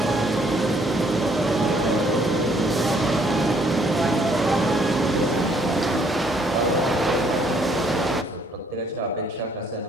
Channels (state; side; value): normal; both; correlation 0.66